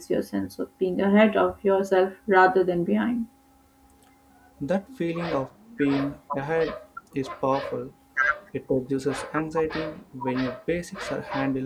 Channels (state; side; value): identical; both; correlation 1.00